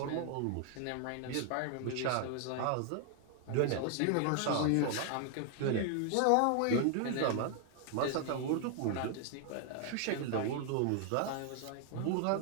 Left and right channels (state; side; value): different; both; correlation 0.00